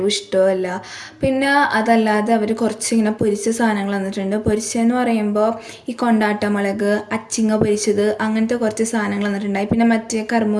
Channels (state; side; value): identical; both; correlation 1.00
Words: ഇഷ്ടമല്ല. പിന്നെ അതല്ലാതെ അവർ കുറച്ചിങ്ങനെ പൊരിച്ച സാധനങ്ങൾ തന്നിട്ടുണ്ട്. പൊരിച്ചതെന്ന് പറയുമ്പോൾ ഈ കൊണ്ടാട്ടമുളക്, അച്ചിങ്ങ പൊരിച്ചത്, അങ്ങനത്തെ കുറച്ച് സാധനങ്ങൾ തന്നിട്ടുണ്ടായി. പിന്നെ മറ്റേ